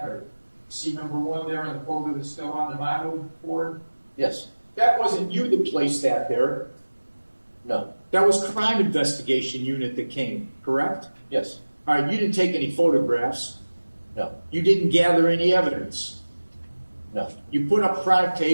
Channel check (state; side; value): inverted; both; correlation -1.00